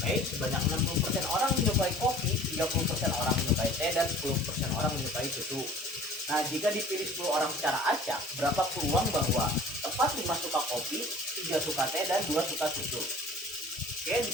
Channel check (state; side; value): normal; both; correlation 0.47